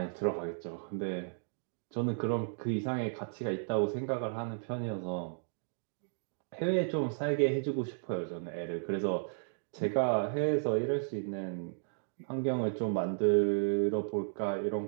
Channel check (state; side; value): silent; left; digital silence